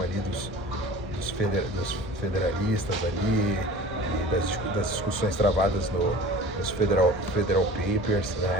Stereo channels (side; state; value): both; normal; correlation 0.41